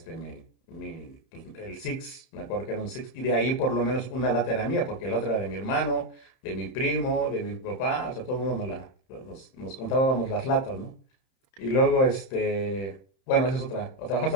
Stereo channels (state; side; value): late; right; 31 ms